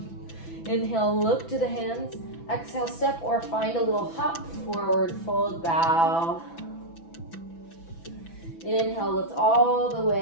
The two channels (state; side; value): late; right; 6.0 ms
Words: Inhale, look to the hands. Exhale, step or find a little hop, forward fold, bow. Inhale, lift all the